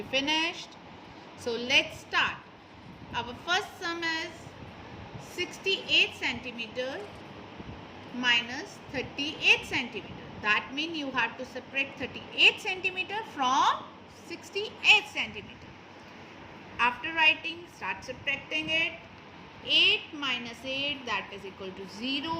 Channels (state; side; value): identical; both; correlation 1.00